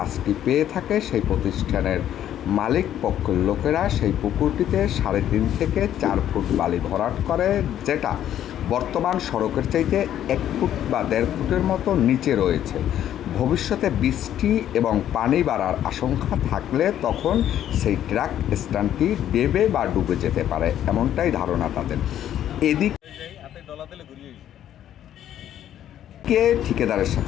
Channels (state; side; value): quieter; right; 11.1 dB